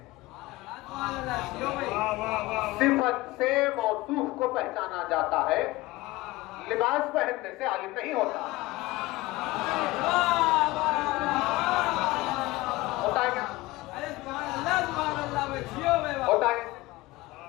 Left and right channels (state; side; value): quieter; right; 19.8 dB